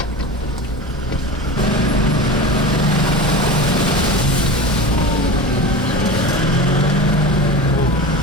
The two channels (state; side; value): normal; both; correlation 0.30